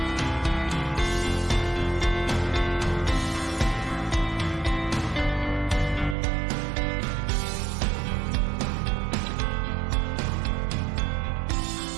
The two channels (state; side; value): drops out; left; at 6.2 s